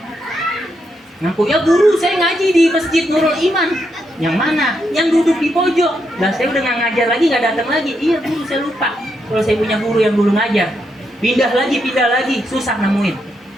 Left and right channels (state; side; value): normal; both; correlation 0.80